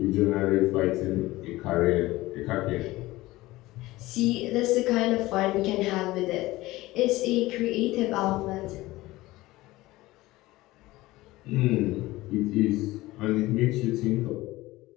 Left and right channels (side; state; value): right; quieter; 18.6 dB